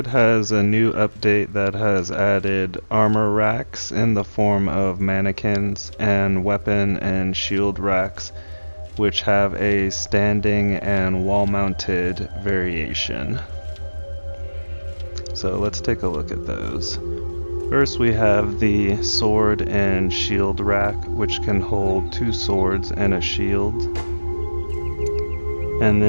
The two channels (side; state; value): both; inverted; correlation -1.00